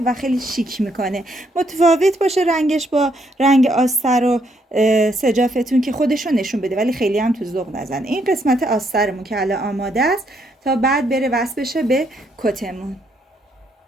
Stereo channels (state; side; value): normal; both; correlation 0.73